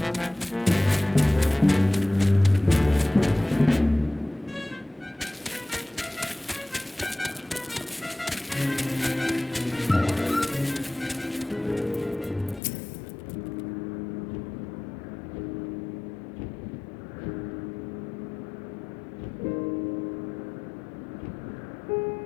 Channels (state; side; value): drops out; right; at 12.6 s